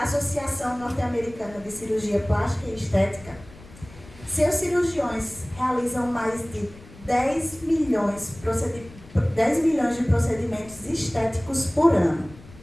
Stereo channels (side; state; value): left; noise; rumble, 20 dB below the sound